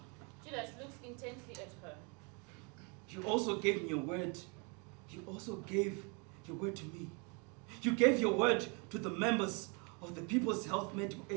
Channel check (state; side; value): quieter; left; 33.2 dB